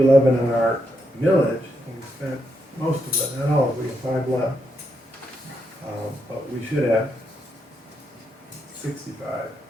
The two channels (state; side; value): normal; both; correlation 0.81